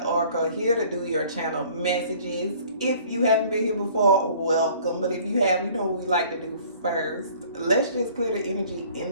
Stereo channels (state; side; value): inverted; both; correlation -0.53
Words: here to do your channel messages. If you haven't been here before, welcome. But if you have, you know what we like to do first. Let's just clear the energy